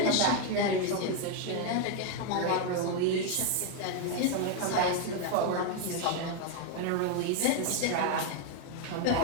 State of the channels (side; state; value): both; different; correlation 0.01